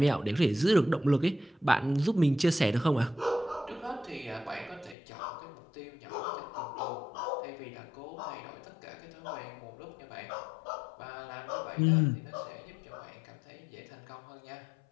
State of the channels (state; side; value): drops out; right; at 5.0 s